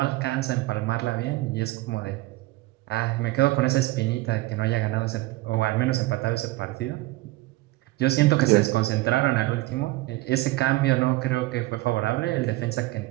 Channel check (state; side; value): quieter; left; 19.2 dB